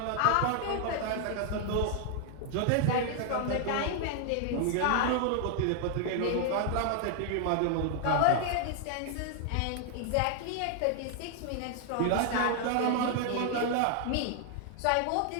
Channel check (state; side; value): different; both; correlation 0.00